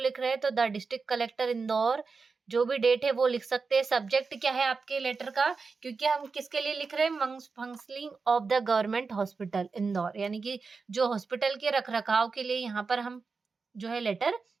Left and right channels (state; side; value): quieter; left; 4.7 dB